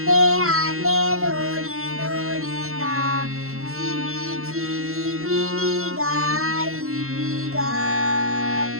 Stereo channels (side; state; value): left; late; 0.62 ms